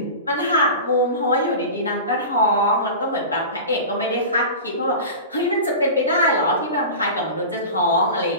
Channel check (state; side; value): inverted; both; correlation -0.31